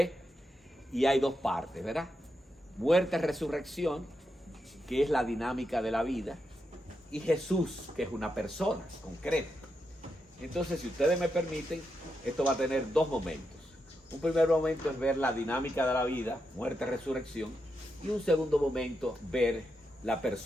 y hay dos partes, ¿verdad? Muerte, resurrección, que es la dinámica de la vida, y Jesús, que es una persona concreta. Entonces, si ustedes me permiten, esto va a tener dos momentos. Un primer momento es ver la dinámica de la vida, muerte, resurrección, y un segundo momento, ver la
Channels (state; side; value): normal; both; correlation 0.85